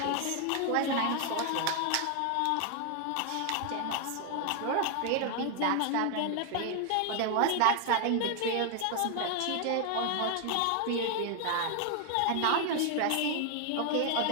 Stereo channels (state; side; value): different; both; correlation 0.00